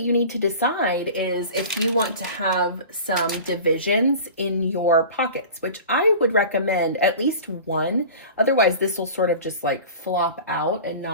need to decide is if you want to have some divisions in your pockets, which I would recommend at least one. Otherwise, this will sort of just like flop out and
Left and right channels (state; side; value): inverted; both; correlation -0.37